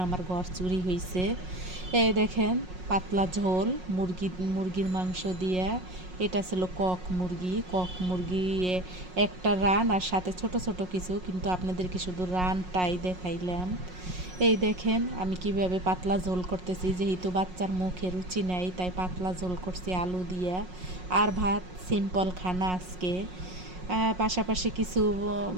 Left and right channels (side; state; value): left; late; 5.5 ms